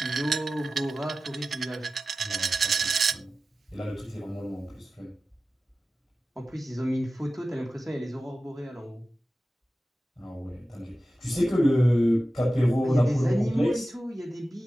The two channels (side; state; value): both; normal; correlation 0.95